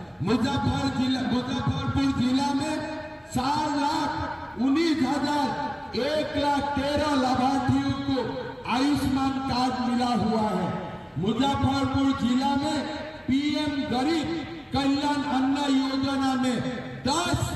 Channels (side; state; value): both; identical; correlation 1.00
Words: मुजफ्फरपुर जिला में 4,19,113 लाभार्थियों को आयुष्मान कार्ड मिला हुआ है। मुजफ्फरपुर जिला में पीएम गरीब कल्याण अन्न योजना में 10